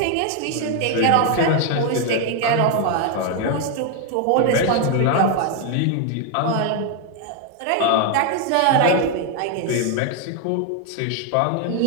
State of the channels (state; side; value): different; both; correlation 0.00